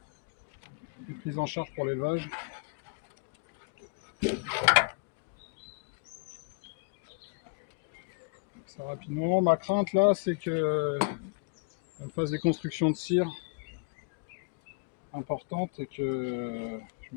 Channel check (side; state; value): right; quieter; 33.8 dB